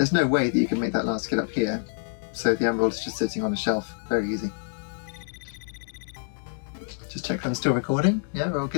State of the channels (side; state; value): right; silent; digital silence